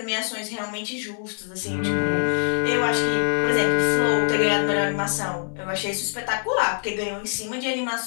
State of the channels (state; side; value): silent; right; digital silence